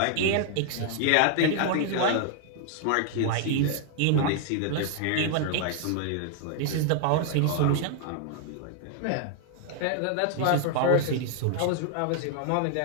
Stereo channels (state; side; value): different; both; correlation 0.00